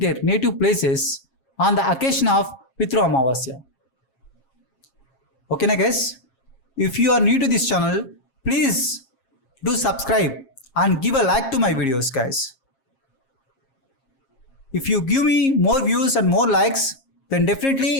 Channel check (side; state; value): right; late; 7.4 ms